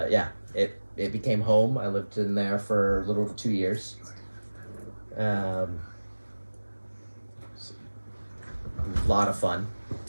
yeah, it became home. I lived in there for a little over 2 years. A lot of fun.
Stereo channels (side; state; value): both; inverted; correlation -1.00